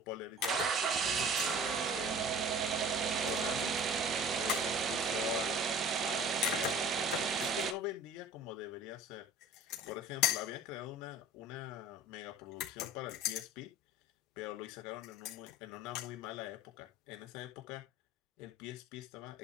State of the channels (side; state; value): both; normal; correlation 0.43